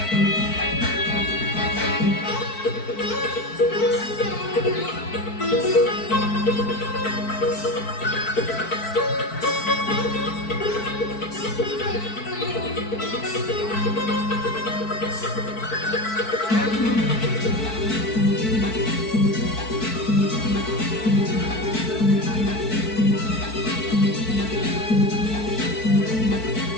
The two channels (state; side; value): late; right; 4.6 ms